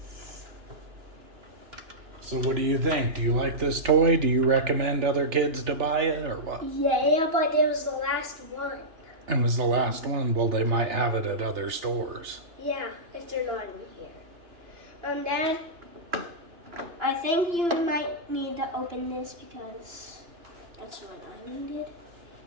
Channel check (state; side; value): late; left; 2.9 ms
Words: So what do you think? Do you like this toy? Do you recommend other kids to buy it or what? Yeah, but it was the last one. It was the last one. Well, they might have it at other stores. Yeah, if they're not in here. Dad, I think you might need to open this because that's what I needed